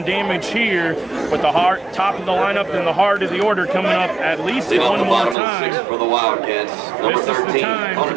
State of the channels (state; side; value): drops out; left; at 5.4 s